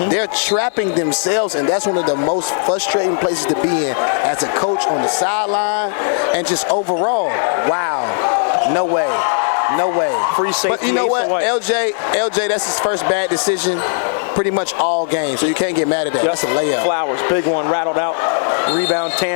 They're trapping themselves, and that's one of the most frustrating places to be in as a coach on the sideline and just overall. Wow. No way. No way. Free safety. But you know what? LJ, that's his first bad decision pretty much all game, so you can't get mad at that. Yep. That's a layup. Flowers, big one, rattled out. Rebound,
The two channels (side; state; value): right; silent; digital silence